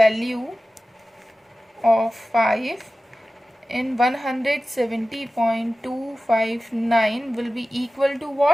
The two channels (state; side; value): normal; both; correlation 0.95